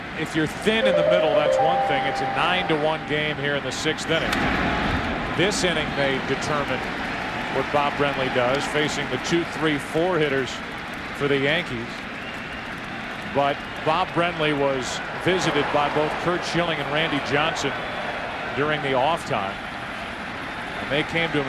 If you're thin in the middle, that's one thing. It's a 9-1 game here in the sixth inning. This inning may determine what Bob Brenly does, facing the 2, 3, 4 hitters for the Yankees. But Bob Brenly was visited by both Curt Schilling and Randy Johnson during the off time. And they came to him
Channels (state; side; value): identical; both; correlation 1.00